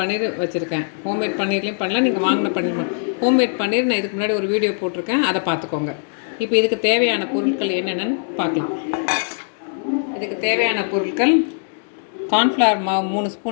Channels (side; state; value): right; silent; digital silence